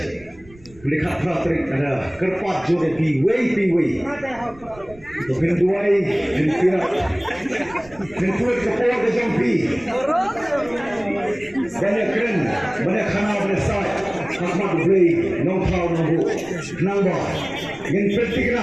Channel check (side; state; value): right; noise; rumble, 23 dB below the sound